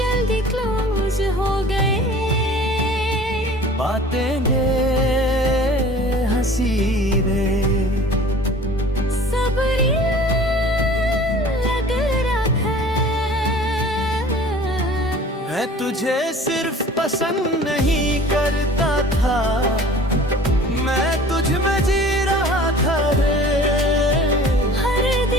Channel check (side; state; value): both; normal; correlation 0.46